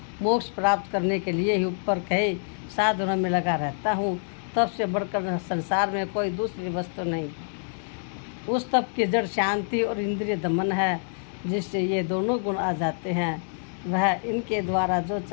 मोक्ष प्राप्त करने के लिए ही ऊपर कहे साधनों में लगा रहता हूँ। तप से बढ़कर संसार में कोई दूसरी वस्तु नहीं। उस तप की जड़ शांति और इंद्रिय दमन है, जिससे ये दोनों गुण आ जाते हैं। वह इनके द्वारा जो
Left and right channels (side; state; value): right; silent; digital silence